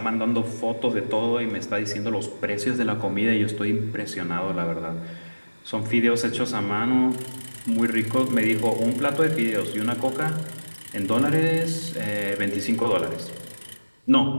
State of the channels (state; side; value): inverted; both; correlation -1.00